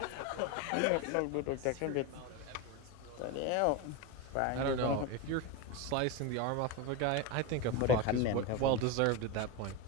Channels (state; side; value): different; both; correlation 0.04